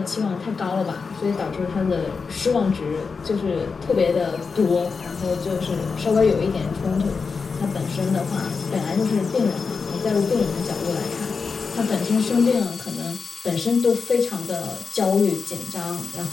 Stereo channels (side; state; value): right; quieter; 5.0 dB